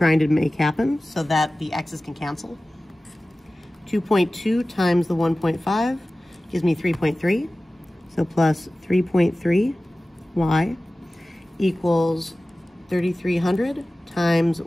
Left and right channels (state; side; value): normal; both; correlation 0.97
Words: to make happen so that the x's can cancel. 2.2 times the 1.5 gives me 3.3. So plus 3.3y equals 3,300 times